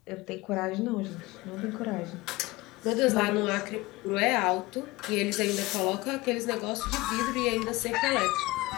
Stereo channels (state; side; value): quieter; right; 21.0 dB